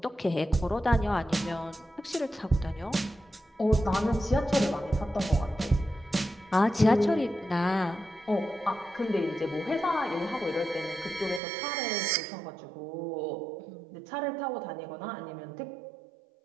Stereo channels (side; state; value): left; drops out; at 11.4 s